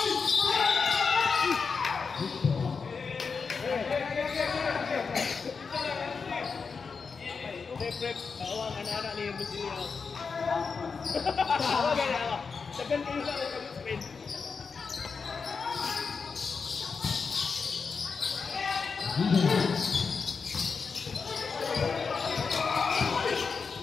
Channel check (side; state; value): right; quieter; 5.2 dB